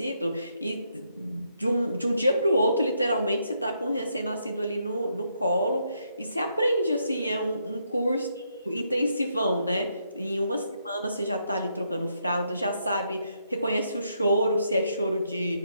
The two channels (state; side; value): inverted; both; correlation -0.77